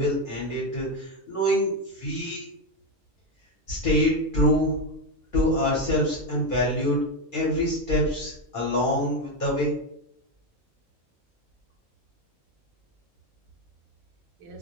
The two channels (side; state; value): both; normal; correlation 0.09